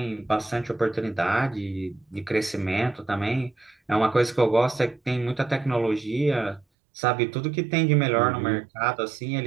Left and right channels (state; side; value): drops out; left; at 6.7 s